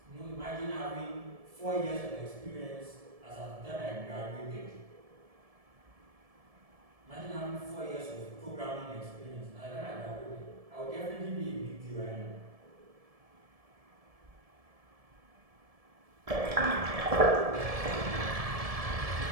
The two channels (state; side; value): late; left; 1.7 ms